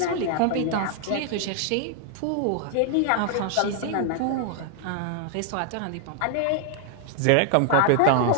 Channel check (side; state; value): both; different; correlation 0.00